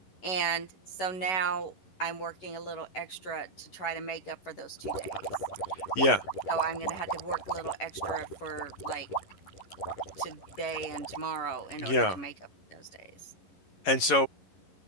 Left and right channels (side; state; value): right; late; 11 ms